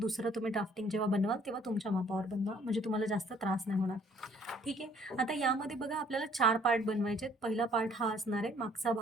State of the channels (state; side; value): normal; both; correlation 0.60